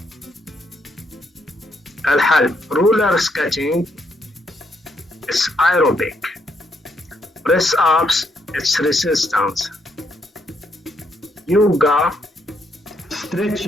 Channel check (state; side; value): normal; both; correlation 0.75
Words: الحل: رولر سكيتينج it's aerobic, press ups it's resistance, yoga,